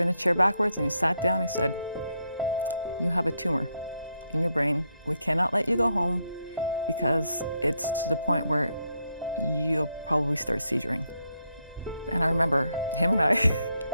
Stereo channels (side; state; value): both; inverted; correlation -0.79